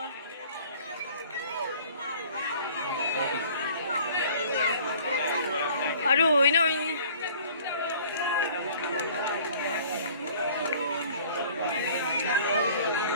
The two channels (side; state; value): both; inverted; correlation -0.51